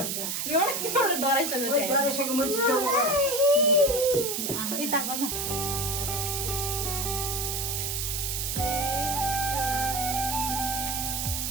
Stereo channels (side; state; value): right; noise; hiss, 1 dB below the sound